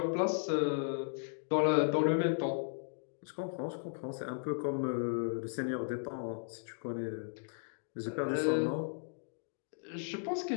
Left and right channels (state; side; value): silent; right; digital silence